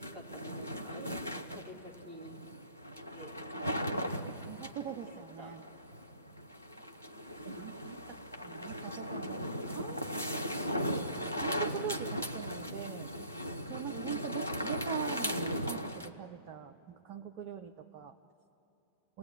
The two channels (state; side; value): inverted; both; correlation -0.53